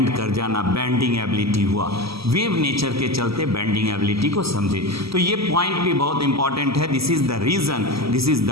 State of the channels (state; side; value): late; left; 0.76 ms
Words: कर जाना, बेंडिंग एबिलिटी हुआ। वेव नेचर के चलते बेंडिंग एबिलिटी को समझे। तो ये पॉइंट भी बहुत इंपॉर्टेंट है। This is the reason, this is